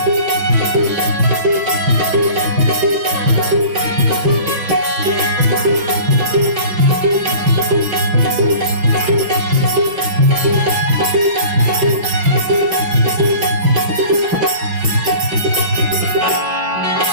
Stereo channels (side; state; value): left; late; 5.9 ms